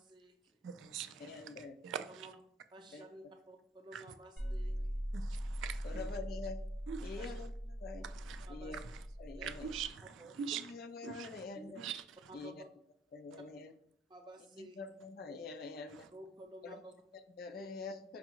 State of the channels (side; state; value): both; normal; correlation 0.66